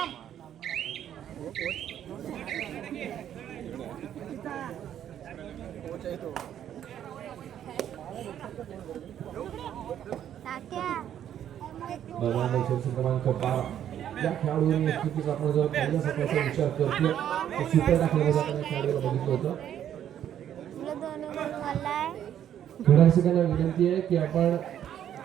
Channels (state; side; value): quieter; left; 10.3 dB